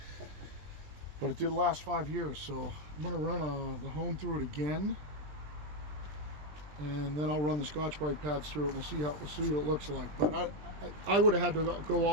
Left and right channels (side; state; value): left; late; 20 ms